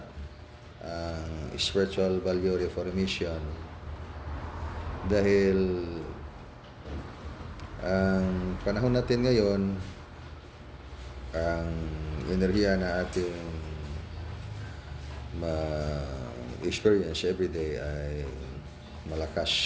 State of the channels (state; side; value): identical; both; correlation 1.00